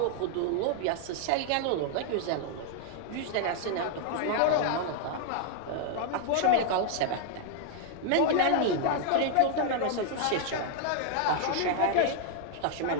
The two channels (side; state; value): both; different; correlation 0.00